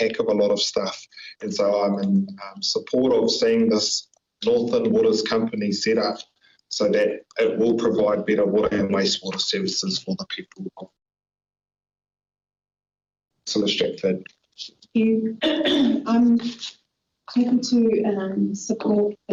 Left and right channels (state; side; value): identical; both; correlation 1.00